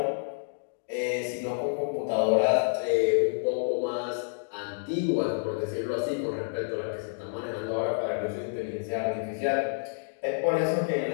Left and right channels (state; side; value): silent; right; digital silence